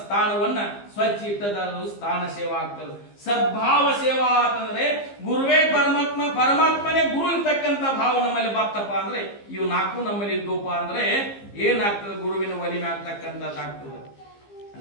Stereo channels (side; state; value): right; late; 15 ms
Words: ಸ್ವಚ್ಛ ಇಟ್ಟದಾದ್ರು ಸ್ಥಾನ ಸೇವಾ ಆಗ್ತದೆ. ಸದ್ಭಾವ ಸೇವಾ ಅಂತಂದ್ರೆ ಗುರುವೇ ಪರಮಾತ್ಮ, ಪರಮಾತ್ಮನೇ ಗುರು ಇರ್ತಕ್ಕಂಥ ಭಾವ ನಮ್ಮಲ್ಲಿ ಬರ್ತಪ್ಪ ಅಂದ್ರೆ ಇವು ನಾಲ್ಕು ನಮ್ಮಲ್ಲಿ ಇದ್ದಪ್ಪ ಅಂದ್ರೆ ಏನಾಗ್ತದೆ? ಗುರುವಿನ ಒಲಿಮೆ ಆಗ್ತಕ್ಕಂಥದ್ದಾಗ್ತದೆ.